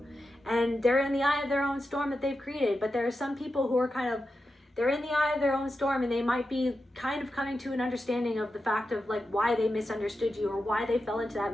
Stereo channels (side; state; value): both; normal; correlation 0.90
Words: And they're in the eye of their own storm that they've created. But there are some people who are they're in the eye of their own storm, and they might be kind of coming to an understanding of the fact of like why they misunderstood you or why they fell into that